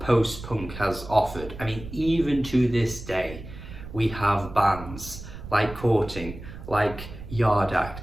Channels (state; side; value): noise; right; rumble, 13 dB below the sound